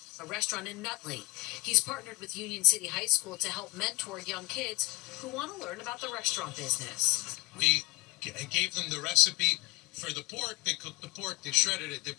a restaurant in Nutley. He's partnered with Union City High School to help mentor young kids who want to learn about the restaurant business. We gave them the recipe for the pork. They cooked the pork, they shredded it, they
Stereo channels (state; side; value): quieter; right; 24.0 dB